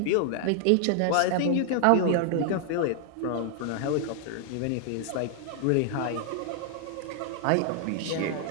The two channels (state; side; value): different; both; correlation 0.00